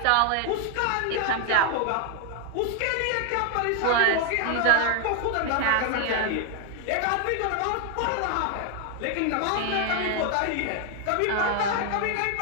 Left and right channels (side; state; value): both; different; correlation 0.00